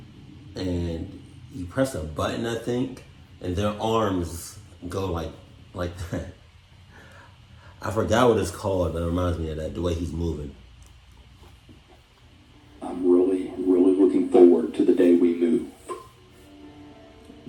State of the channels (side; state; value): both; identical; correlation 1.00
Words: And you press a button, I think, and their arms go like that. I forgot what it's called, but it reminds me of that, the way he's moving. I'm really looking forward to the day we move.